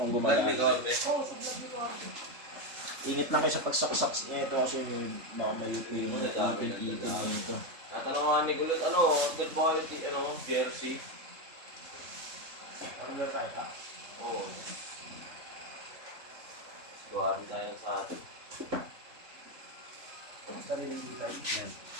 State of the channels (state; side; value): late; left; 3.7 ms